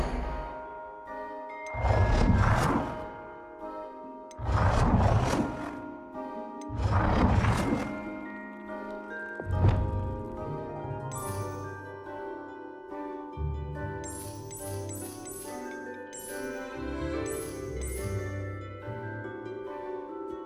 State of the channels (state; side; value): identical; both; correlation 1.00